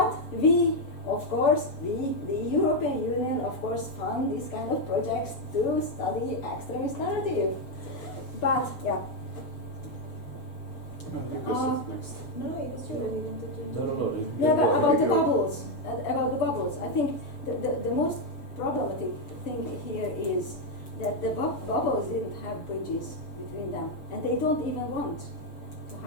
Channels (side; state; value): right; late; 6.4 ms